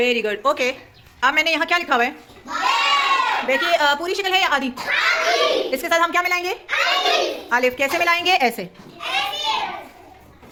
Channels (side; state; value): both; identical; correlation 1.00